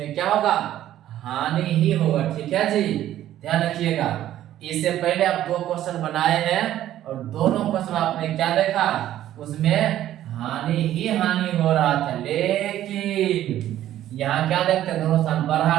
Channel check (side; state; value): left; quieter; 12.6 dB